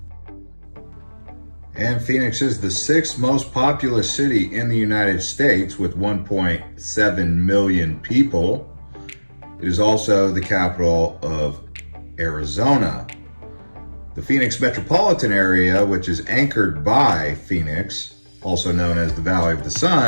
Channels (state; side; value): inverted; both; correlation -1.00